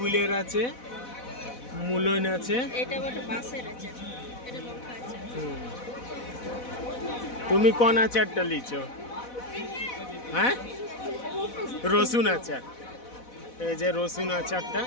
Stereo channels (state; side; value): late; right; 4.1 ms